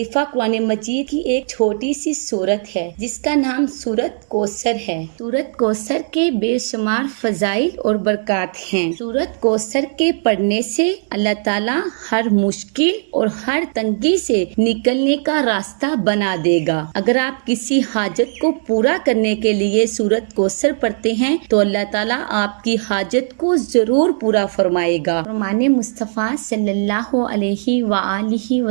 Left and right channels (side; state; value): left; silent; digital silence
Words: قرآن مجید کی ایک چھوٹی سی سورت ہے جس کا نام سورت کوثر ہے۔ سورت کوثر کے بے شمار فضائل اور برکات ہیں۔ سورت کوثر کے پڑھنے سے اللہ تعالیٰ ہر مشکل اور ہر تنگی سے نکلنے کا راستہ بنا دے گا۔ اگر آپ کسی حاجت کو پورا کرنے کے لیے سورت کوثر پڑھتے ہیں تو اللہ تعالیٰ آپ کی حاجت کو ضرور پورا فرمائے گا۔ فرمان مصطفیٰ صلی اللہ علیہ وآلہ